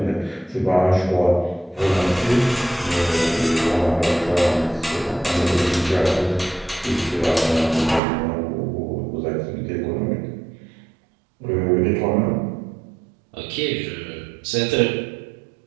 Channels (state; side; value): drops out; left; at 8.0 s